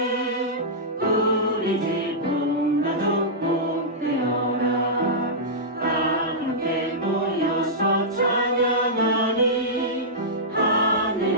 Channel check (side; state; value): both; normal; correlation -0.13